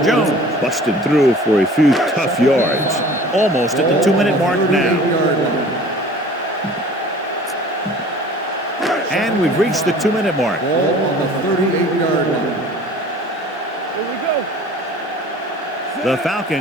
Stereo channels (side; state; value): both; normal; correlation 0.46